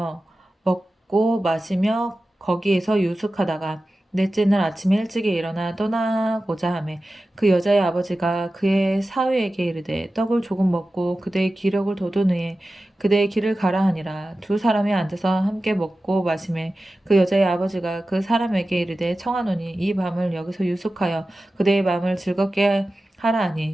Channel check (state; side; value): normal; both; correlation 0.94